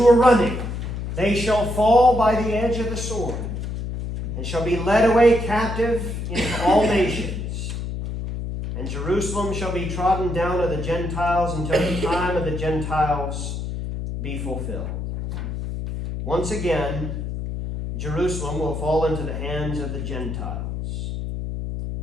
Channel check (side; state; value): left; noise; hum, 5 dB below the sound